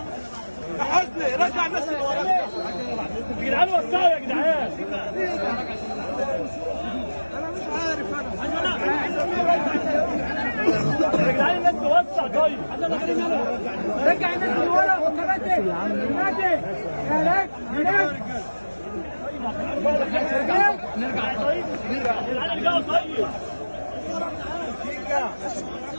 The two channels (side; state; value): both; inverted; correlation -1.00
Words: يا حسني رجع الناس اللي وراك يا جدعان وسعوا يا جدعان. انا مش عارف انا يا جدعان الناس توسع طيب. رجع الناس اللي ورا وكباتن كباتن هناك هناك نرجع طيب. نرجع يا جدعان ارجعوا طيب.